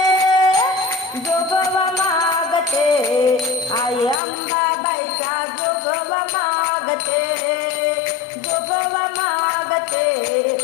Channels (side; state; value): right; drops out; at 4.2 s